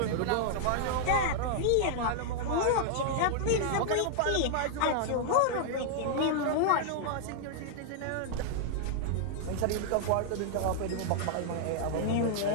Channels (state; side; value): different; both; correlation -0.01